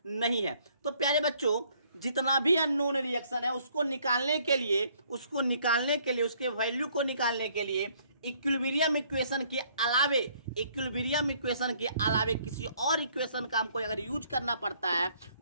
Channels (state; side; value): inverted; both; correlation -0.64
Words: नहीं है। तो प्यारे बच्चों जितना भी अननोन रिएक्शन है उसको निकालने के लिए उसके वैल्यू को निकालने के लिए इक्विलिब्रियम इक्वेशन के अलावे किसी और इक्वेशन का हमको अगर यूज करना पड़ता है